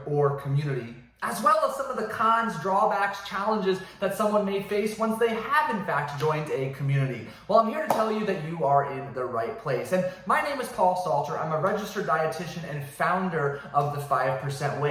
or community, as well as some of the cons, drawbacks, challenges that someone may face once they have in fact joined a community. Well, I'm here to tell you that you are in the right place. And my name is Paul Salter. I'm a registered dietitian and founder of the 5%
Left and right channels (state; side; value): identical; both; correlation 1.00